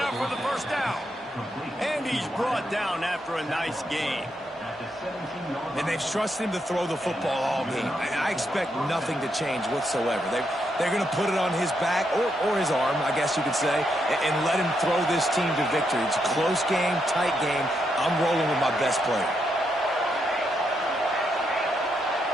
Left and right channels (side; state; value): both; normal; correlation 0.80